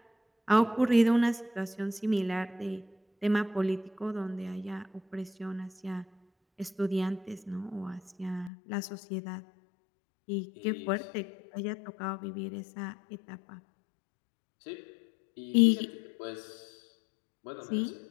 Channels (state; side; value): drops out; right; at 8.5 s